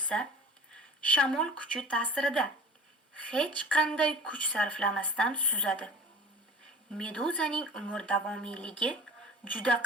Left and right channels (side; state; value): both; normal; correlation 0.41